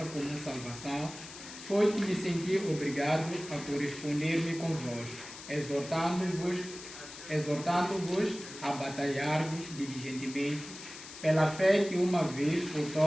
comum salvação, foi que me senti obrigado a corresponder-me convosco, exortando-vos a batalhar-vos diligentemente pela fé que uma vez por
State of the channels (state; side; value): noise; left; hiss, 13 dB below the sound